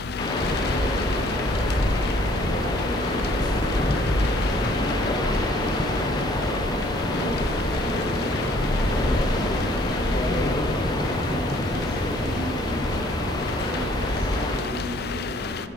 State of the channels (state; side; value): normal; both; correlation 0.60